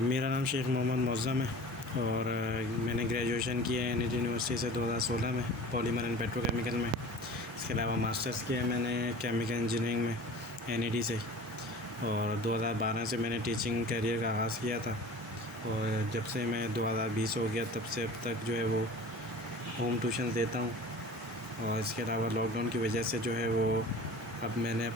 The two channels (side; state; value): both; normal; correlation 0.40